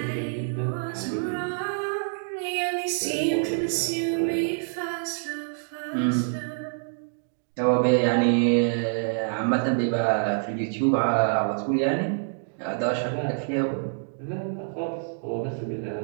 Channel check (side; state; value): left; silent; digital silence